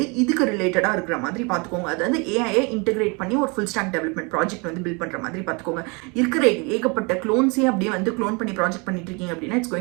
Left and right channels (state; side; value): quieter; left; 30.5 dB